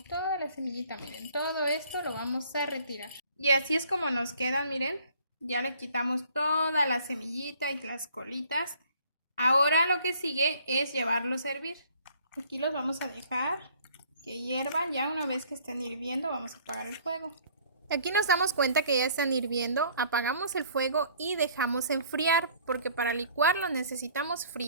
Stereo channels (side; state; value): both; inverted; correlation -0.57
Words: toda la semillita. Miren, todo esto lo vamos a retirar. Y así es como nos quedan, miren. Ya le quitamos toda la semillita y las colitas. Ahora lo que sigue es llevarlos a hervir. Aquí los vamos a dejar que hiervan. Ya una vez que estén hirviendo vamos a apagar el fuego. Aquí nos damos cuenta que ya están hirviendo, apagamos el fuego y dejamos enfriar, porque para licuarlo necesitamos